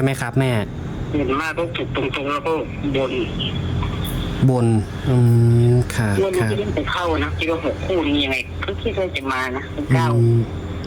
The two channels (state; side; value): identical; both; correlation 1.00